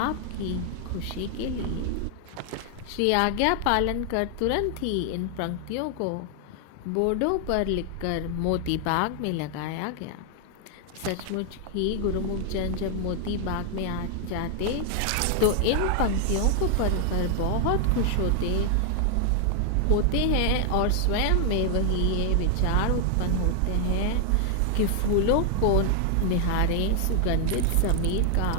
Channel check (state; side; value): different; both; correlation 0.00